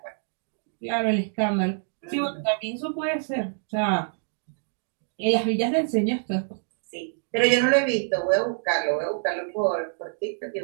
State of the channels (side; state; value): left; silent; digital silence